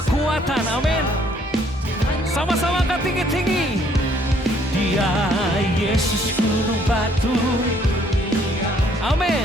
Amin. Sama-sama angkat tinggi-tinggi. Ya Yesus gunung batu.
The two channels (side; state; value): both; normal; correlation 0.64